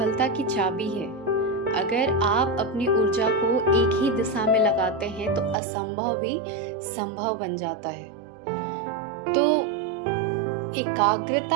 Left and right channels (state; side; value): drops out; left; at 5.6 s